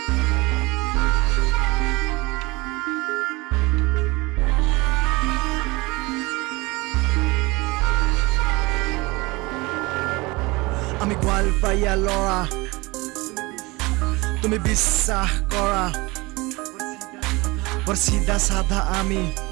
আমি গোৱালপাৰীয়া ল'ৰা তুমি বিশ্বাস কৰা বৰ চিধা সাধা আমি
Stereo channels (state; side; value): quieter; left; 23.5 dB